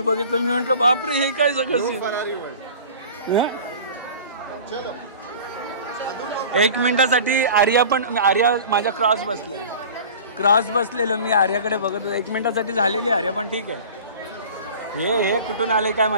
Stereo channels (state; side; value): inverted; both; correlation -0.40